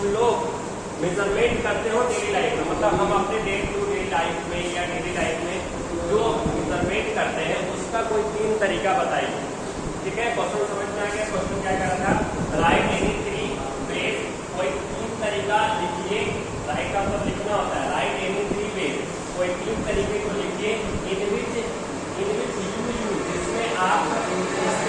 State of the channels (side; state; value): both; identical; correlation 1.00